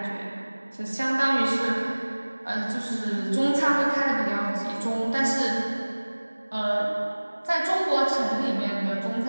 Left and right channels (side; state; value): both; inverted; correlation -1.00